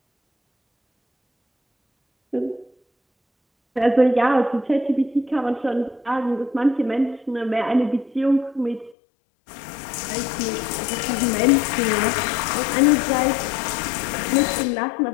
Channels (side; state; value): right; drops out; at 9.0 s